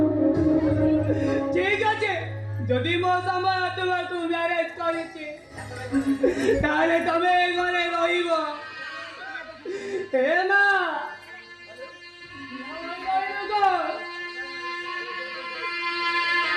ठीक আছে যদি মো সময় তোমাকে ম্যারেজ করেছি তাহলে তুমি এই ঘরে রহিব হে মা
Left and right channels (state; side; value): identical; both; correlation 1.00